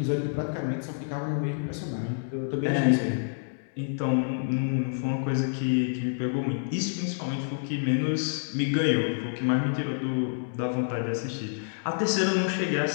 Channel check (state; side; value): silent; right; digital silence